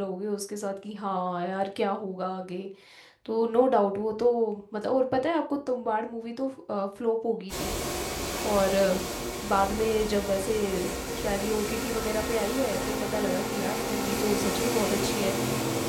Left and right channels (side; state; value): both; identical; correlation 1.00